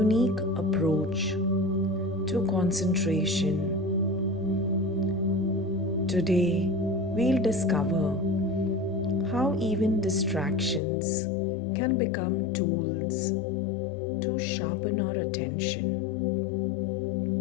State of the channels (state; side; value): drops out; right; at 10.8 s